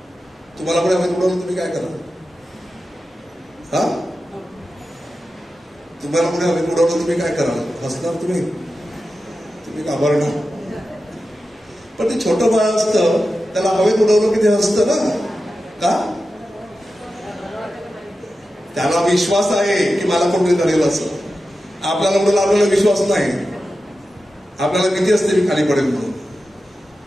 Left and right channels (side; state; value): both; normal; correlation 0.92